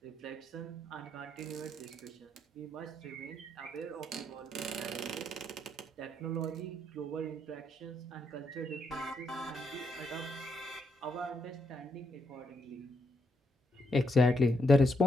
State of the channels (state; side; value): normal; both; correlation 0.78